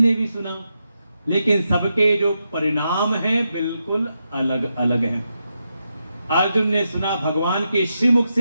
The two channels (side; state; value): both; inverted; correlation -0.86